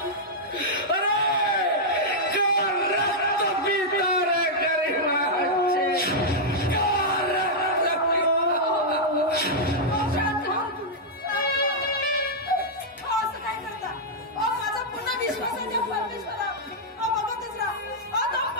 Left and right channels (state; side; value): normal; both; correlation -0.07